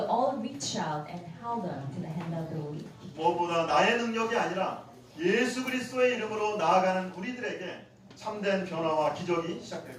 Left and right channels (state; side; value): identical; both; correlation 1.00